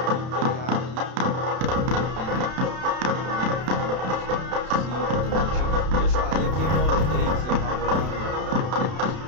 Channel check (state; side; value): late; left; 32 ms